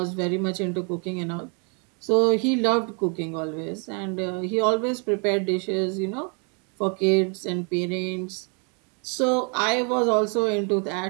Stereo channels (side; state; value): left; quieter; 36.9 dB